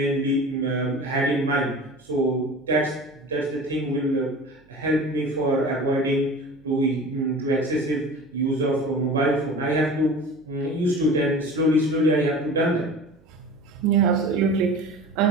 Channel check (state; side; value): noise; right; hum, 30 dB below the sound